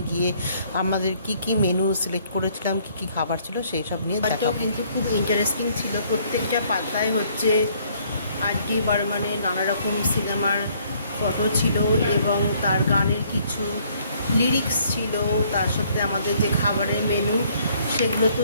গিয়ে আমাদের কি কি মেনু সিলেক্ট করেছিলাম, কি কি খাবার ছিল সেই সব নিয়ে দেখাবো। কিন্তু খুব ইন্টারেস্টিং ছিল, প্রত্যেকটা পাতায় হচ্ছে আর.ডি. বর্মনের নানা রকম সিনেমার ফটো ছিল এবং তার গানের কিছু লিরিক্স ছিল, তার সাথে আমাদের যে খাবারের মেনু সেগুলো তো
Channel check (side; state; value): both; inverted; correlation -0.64